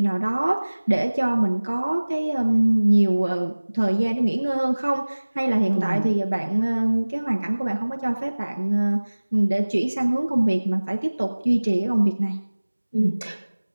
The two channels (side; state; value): both; inverted; correlation -1.00